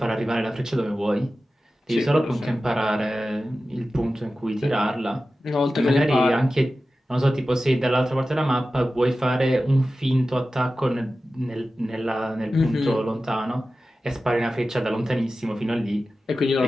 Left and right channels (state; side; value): normal; both; correlation 0.94